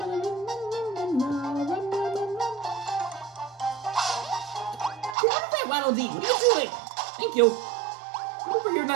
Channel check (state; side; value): drops out; left; at 5.2 s